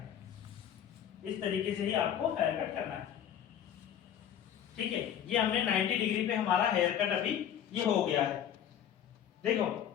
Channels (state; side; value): quieter; right; 9.7 dB